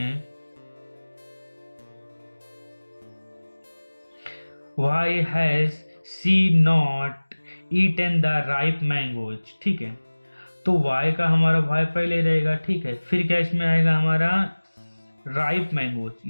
why has she not eaten the ripe mangoes. ठीक है, तो वाई का हमारा वाई पहले रहेगा। ठीक है, फिर क्या इसमें आएगा हमारा राइप मैंगोज,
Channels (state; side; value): inverted; both; correlation -1.00